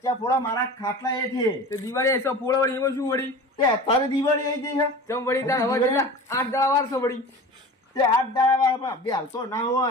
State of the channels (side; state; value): both; normal; correlation 0.36